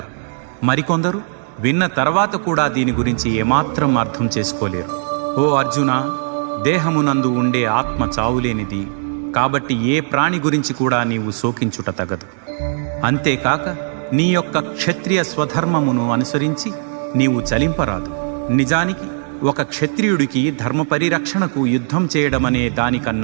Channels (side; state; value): left; silent; digital silence